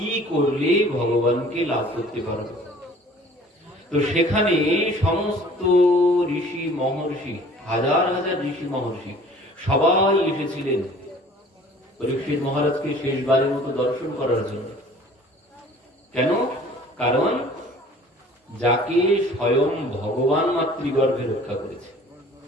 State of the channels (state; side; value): normal; both; correlation 0.50